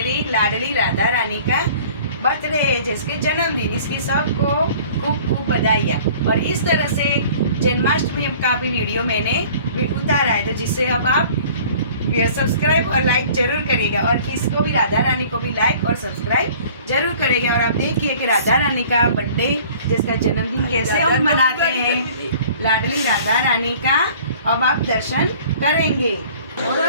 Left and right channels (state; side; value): inverted; both; correlation -0.49